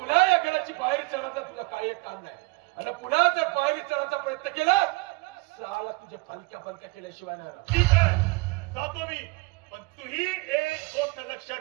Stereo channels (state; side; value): quieter; left; 25.6 dB